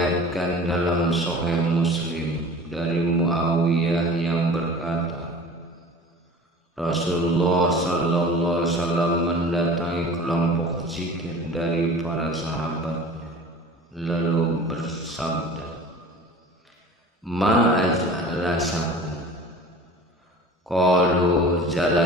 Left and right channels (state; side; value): normal; both; correlation 0.40